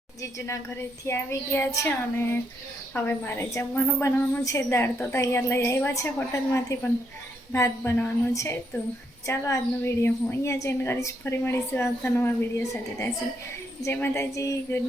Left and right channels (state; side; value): normal; both; correlation 0.76